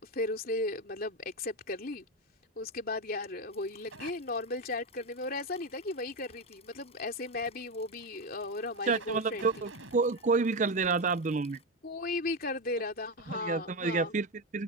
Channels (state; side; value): normal; both; correlation 0.11